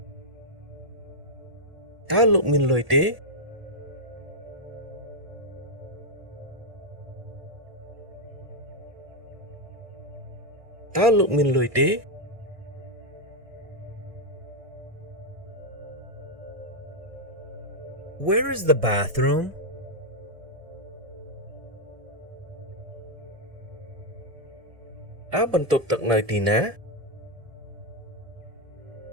តើលោកមានលុយទេតើលោកមានលុយទេ Where is the bathroom? តើបន្ទប់ទឹកនៅទីណា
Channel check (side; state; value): left; late; 1.6 ms